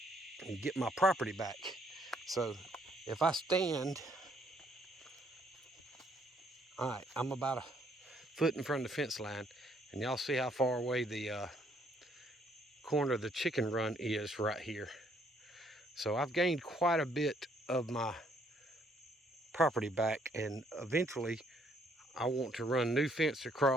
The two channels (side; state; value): both; normal; correlation 0.67